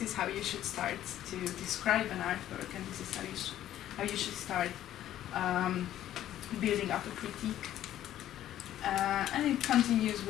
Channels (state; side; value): quieter; right; 12.4 dB